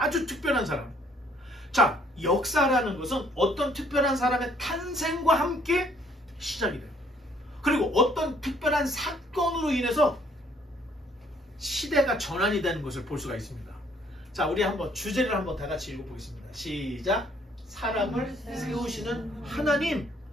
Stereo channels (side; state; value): both; normal; correlation 0.64